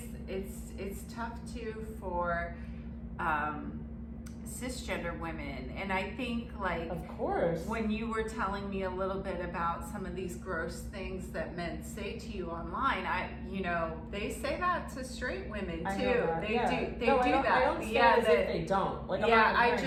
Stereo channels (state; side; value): identical; both; correlation 1.00